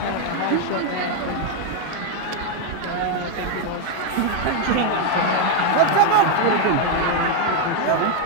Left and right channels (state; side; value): different; both; correlation 0.01